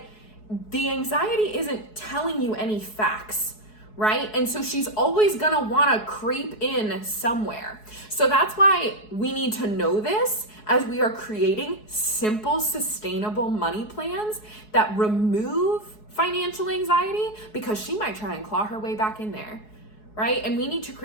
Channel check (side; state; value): right; late; 4.7 ms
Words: the anxiety isn't telling you any facts, right? And so she's always gonna wanna creep in somewhere. So that's why we need to know this as we are creating simple, sustainable money plans that remove financial anxiety, because she might try and claw her way back in there, right? And we need to